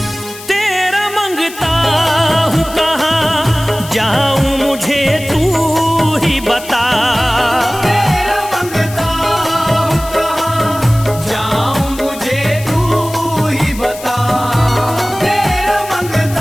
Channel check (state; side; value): noise; left; hiss, 15 dB below the sound